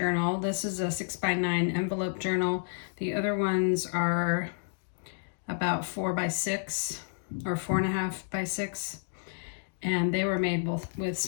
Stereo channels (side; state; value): right; silent; digital silence